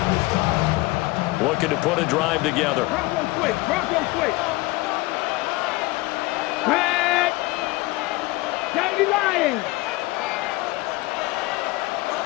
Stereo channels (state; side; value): quieter; right; 21.4 dB